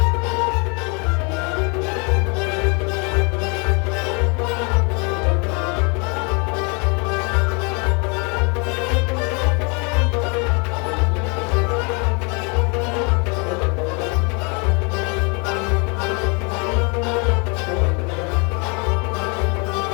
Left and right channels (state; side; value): quieter; right; 33.0 dB